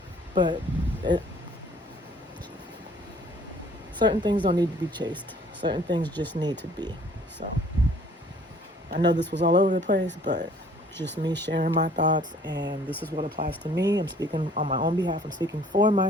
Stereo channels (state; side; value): normal; both; correlation 0.56